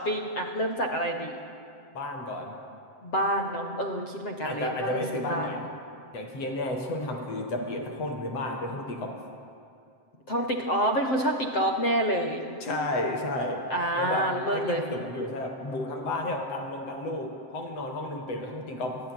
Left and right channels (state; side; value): late; right; 7.7 ms